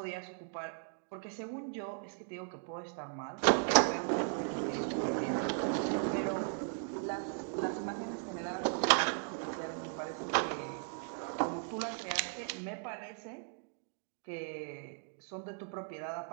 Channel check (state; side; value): silent; left; 53 dB below the other